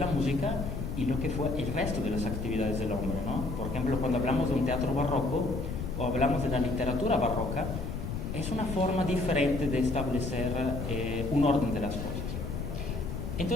música y lo que fue el resto de las actividades del hombre, ¿no? Por ejemplo, cuando hablamos de un teatro barroco o hablamos de la literatura barroca, es una forma diferente de establecer un orden de las cosas.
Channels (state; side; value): noise; left; rumble, 4 dB below the sound